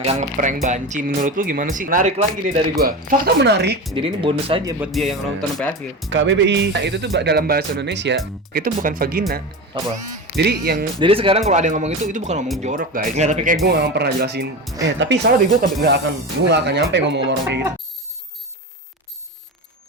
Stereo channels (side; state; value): both; normal; correlation 0.24